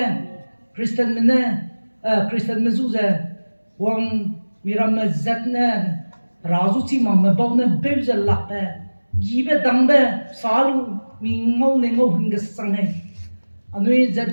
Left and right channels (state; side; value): inverted; both; correlation -1.00